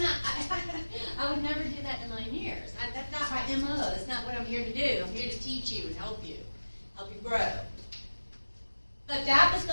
not. I would never do that in a million years. That's not my MO. That's not what I'm here to do. I'm here to teach you and help you grow. But that was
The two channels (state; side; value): inverted; both; correlation -1.00